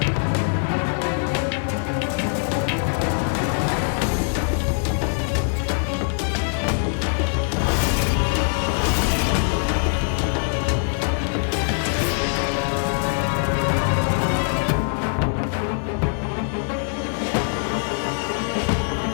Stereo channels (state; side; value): silent; right; 58 dB below the other